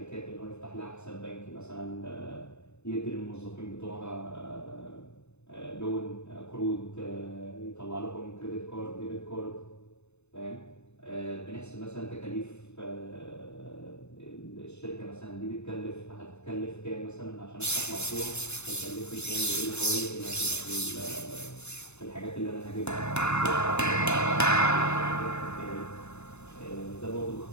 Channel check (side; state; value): right; late; 0.81 ms